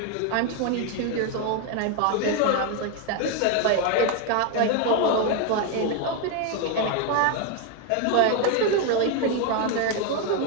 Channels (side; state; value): both; different; correlation 0.01